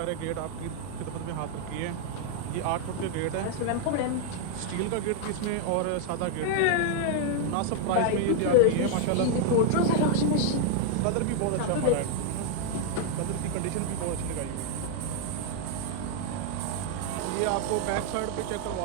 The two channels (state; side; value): different; both; correlation 0.00